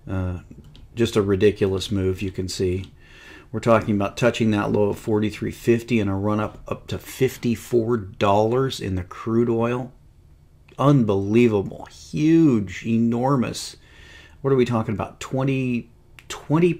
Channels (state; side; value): identical; both; correlation 1.00